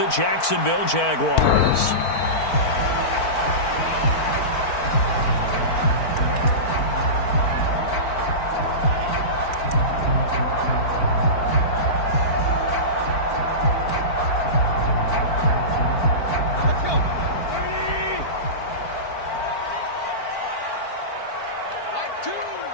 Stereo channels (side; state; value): right; late; 4.5 ms